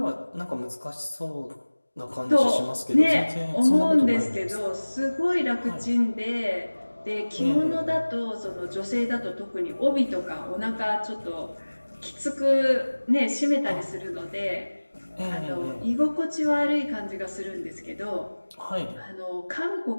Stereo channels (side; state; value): both; inverted; correlation -1.00